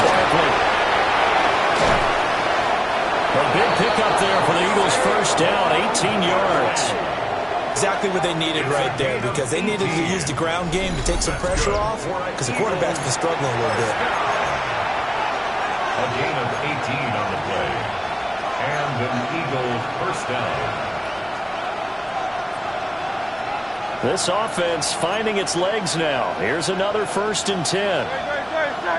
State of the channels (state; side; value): identical; both; correlation 1.00